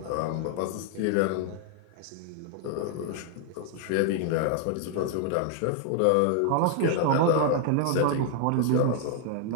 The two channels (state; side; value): different; both; correlation 0.00